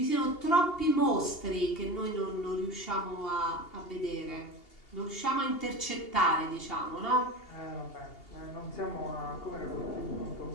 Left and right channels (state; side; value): late; right; 2.8 ms